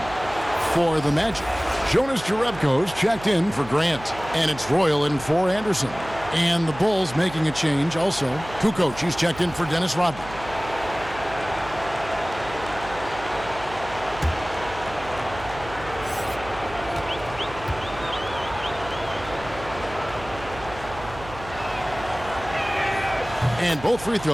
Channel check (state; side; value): noise; right; hum, 15 dB below the sound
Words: For the Magic, Jonas Jerebko's checked in for Grant. And it's Royal in for Anderson. And the Bulls making a change also. Kukoc, he's checked in for Dennis Rodman. And both free